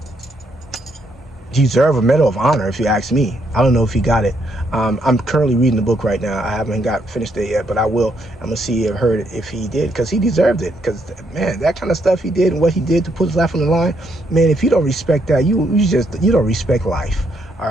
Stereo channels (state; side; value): normal; both; correlation 0.74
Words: deserve a Medal of Honor, if you ask me. I don't know if he got it. I'm currently reading the book right now. I haven't finished it yet, but I will. I'm gonna see if he did, because he deserved it. Because man, that kind of stuff he did and what he did to put his life on the line, man, if you don't respect that, you don't respect life. All